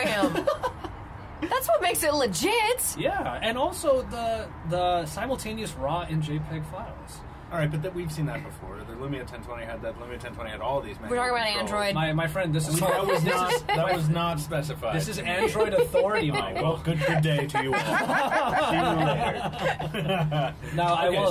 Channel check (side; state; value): both; identical; correlation 1.00